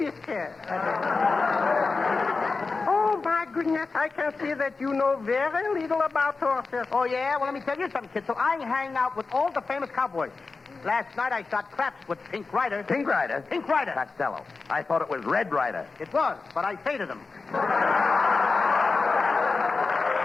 Oh, my goodness, I can see that you know very little about horses. Oh, yeah? Well, let me tell you something, Kitzel. I hang out with all the famous cowboys. Last night I shot craps with Pink Rider. Pink Rider? Pink Rider. Costello. I thought it was Red Rider. It was, but I faded him.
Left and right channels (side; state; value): right; quieter; 4.1 dB